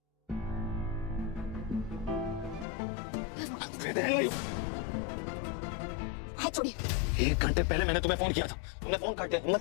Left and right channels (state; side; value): drops out; right; at 2.7 s